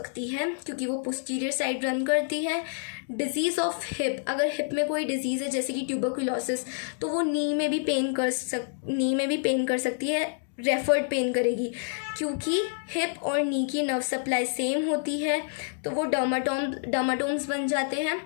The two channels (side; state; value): right; silent; digital silence